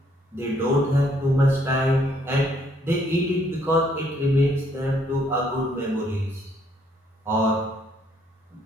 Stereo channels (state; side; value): normal; both; correlation 0.68